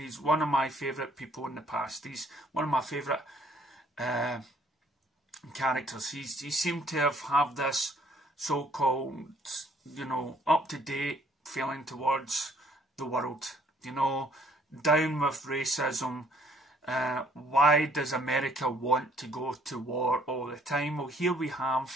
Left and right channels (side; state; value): both; normal; correlation 0.63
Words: one of my favourite people in the past. He's one of my favourite characters. He seemed to have this so-called, you know, up-to-date feeling towards the world. You know, down with racism. Why does America want to go to war all the time? Well, here we